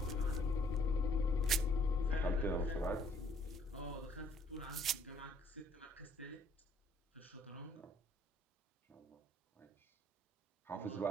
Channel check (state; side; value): normal; both; correlation 0.64